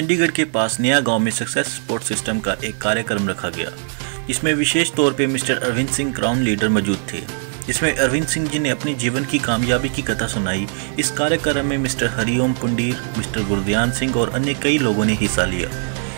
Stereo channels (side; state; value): left; silent; 62 dB below the other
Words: के पास नया गांव में सक्सेस सपोर्ट सिस्टम का एक कार्यक्रम रखा गया, जिसमें विशेष तौर पे mister Arvind Singh crown leader मौजूद थे। इसमें अरविंद सिंह जी ने अपनी जीवन की कामयाबी की कथा सुनाई। इस कार्यक्रम में मिस्टर हरिओम पुंडीर, मिस्टर गुरदयान सिंह और अन्य कई लोगों ने हिस्सा लिया।